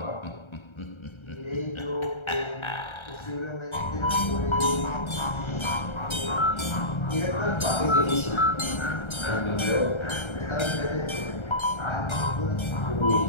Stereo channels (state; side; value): late; right; 1.3 ms